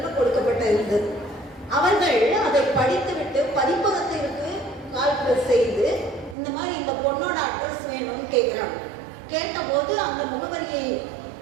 கொடுக்கப்பட்ட இருந்தது. அவர்கள் அதை படித்துவிட்டு பதிப்பகத்திற்கு கால் செய்து இந்த மாதிரி இந்த பொண்ணோட அட்ரஸ் வேணும்னு கேட்குறாங்க. கேட்டபோது அந்த முகவரியை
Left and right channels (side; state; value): left; drops out; at 6.4 s